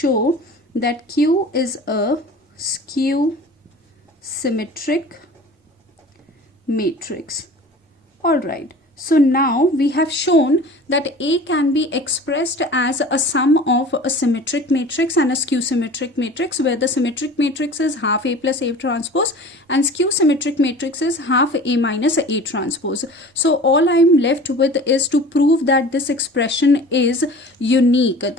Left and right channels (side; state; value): both; normal; correlation 0.41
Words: that Q is a skew-symmetric matrix. Alright. So now we have shown that A can be expressed as a sum of a symmetric matrix and a skew-symmetric matrix, where the symmetric matrix is half A plus A transpose and skew-symmetric matrix is half A minus A transpose. So all I am left with is to prove that this expression is unique.